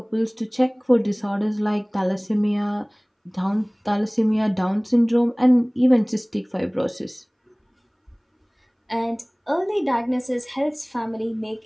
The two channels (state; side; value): identical; both; correlation 1.00